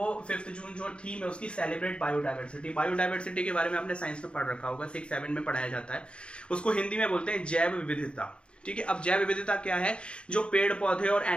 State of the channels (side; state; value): right; late; 0.056 ms